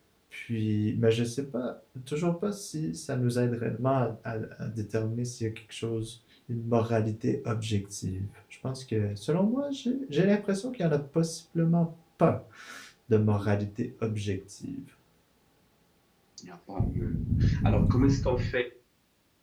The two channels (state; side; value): identical; both; correlation 1.00